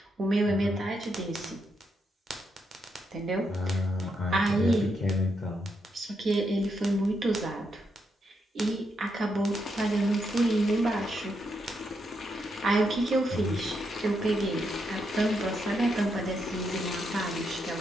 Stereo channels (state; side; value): normal; both; correlation 0.80